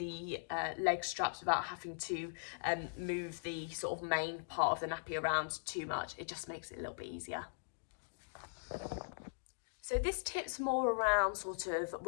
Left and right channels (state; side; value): silent; right; digital silence